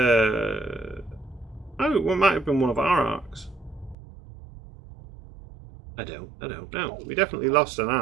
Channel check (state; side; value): drops out; left; at 4.0 s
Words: Oh, it might have been one of our arcs. I don't know. We definitely lost an